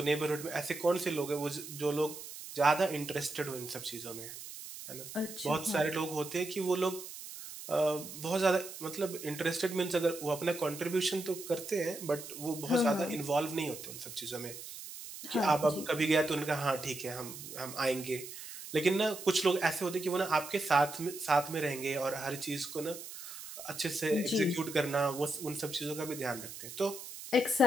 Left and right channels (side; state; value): right; noise; hiss, 12 dB below the sound